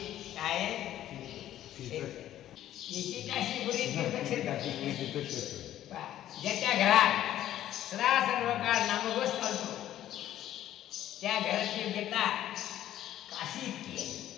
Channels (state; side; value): quieter; right; 12.4 dB